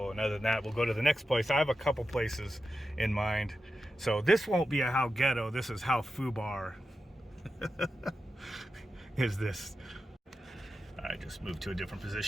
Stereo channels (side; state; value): both; normal; correlation 0.91